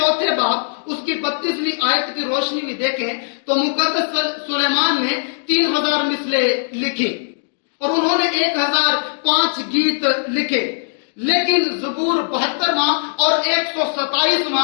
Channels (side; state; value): right; silent; digital silence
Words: باب اس کی 32ویں آیت کی روشنی میں دیکھیں تو مقدس سلیمان نے 3000 مثلیں لکھی اور انہوں نے 1005 گیت لکھے، لیکن زبور 72واں اور